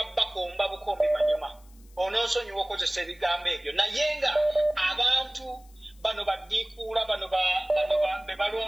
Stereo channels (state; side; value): noise; left; hiss, 29 dB below the sound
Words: bakomba bukombi manyuma onoosonyiwa okozesa ebigambo ebyo naye nga abantu bano baddiikuula bano be